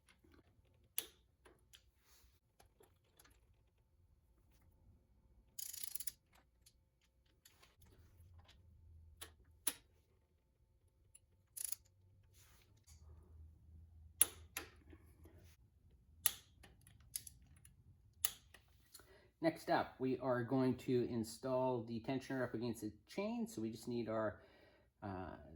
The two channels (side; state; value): both; identical; correlation 1.00